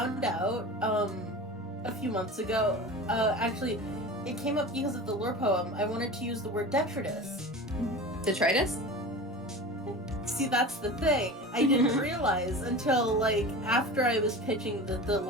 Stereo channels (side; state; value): both; normal; correlation 0.33